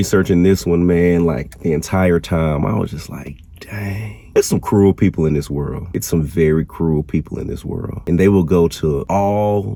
this one, man, like the entire time, I was just like, dang. There's some cruel people in this world. It's some very cruel people in this world. And they will go to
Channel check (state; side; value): identical; both; correlation 1.00